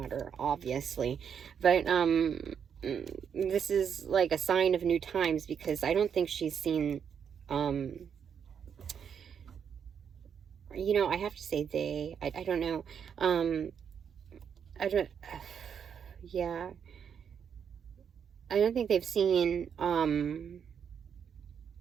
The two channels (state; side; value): quieter; left; 7.6 dB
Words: obviously. But this is like a sign of new times, because I don't think she's seen, you know, I have to say they, I don't know, yeah, I don't think they've seen,